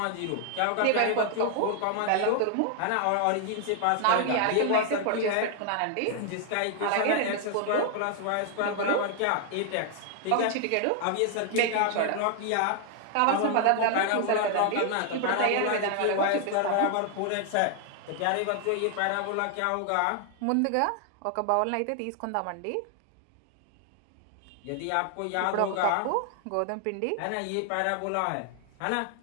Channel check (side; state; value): both; different; correlation 0.00